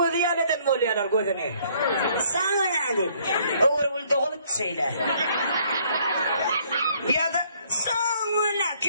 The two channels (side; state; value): both; inverted; correlation -0.64